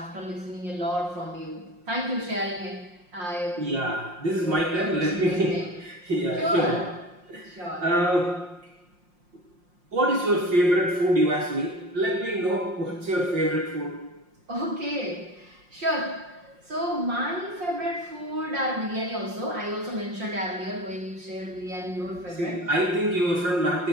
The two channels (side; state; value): left; late; 5.6 ms